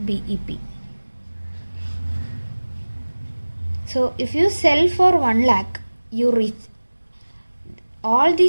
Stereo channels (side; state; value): both; inverted; correlation -1.00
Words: So if you sell for 1 lakh, you reach all